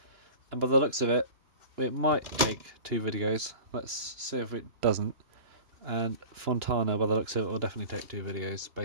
and by the looks of it, it might take 2 videos. Let's see if it doesn't. And Fontana, by the looks of it, will definitely take 2 videos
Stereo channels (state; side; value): late; left; 2.9 ms